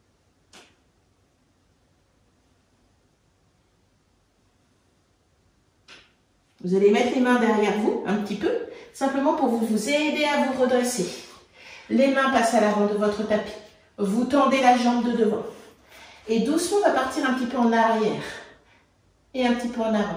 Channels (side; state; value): both; identical; correlation 1.00